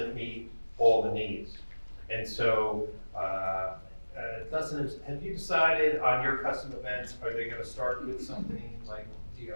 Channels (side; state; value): both; inverted; correlation -1.00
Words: meet all the needs. And so, Dustin, have you decided on your custom events, are they gonna start with something like